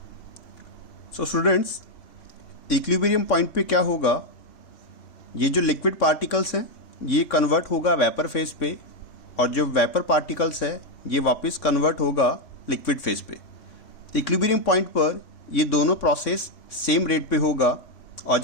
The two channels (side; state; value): right; late; 3.6 ms